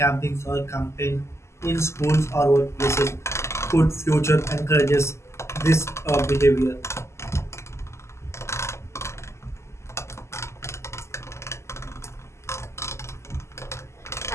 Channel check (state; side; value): late; right; 0.13 ms